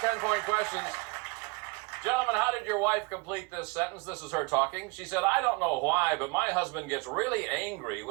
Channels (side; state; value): left; quieter; 27.5 dB